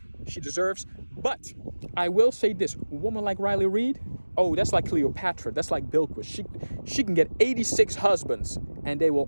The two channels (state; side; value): inverted; both; correlation -1.00